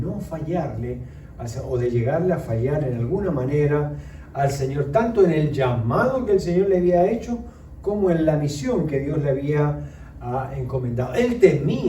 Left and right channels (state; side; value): identical; both; correlation 1.00